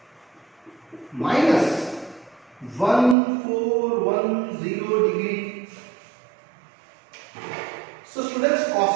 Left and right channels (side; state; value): left; drops out; at 3.2 s